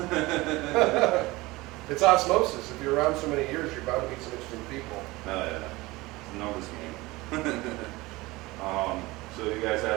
It's osmosis. If you're around so many years, you're bound to meet some interesting people. Oh yeah. It's a numbers game. So you guys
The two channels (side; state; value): left; quieter; 21.0 dB